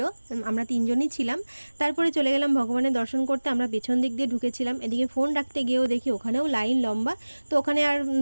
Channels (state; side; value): inverted; both; correlation -1.00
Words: আমরা 3 জনই ছিলাম। তারপরে চলে গেলাম ভগবানের দর্শন করতে। আমরা পেছন দিক দিয়ে ঢুকেছিলাম। এদিকে ফোন রাখতে গিয়েও দেখি ওখানেও লাইন লম্বা। তো ওখানে আর